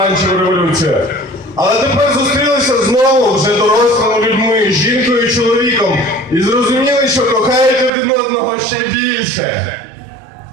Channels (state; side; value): drops out; left; at 7.9 s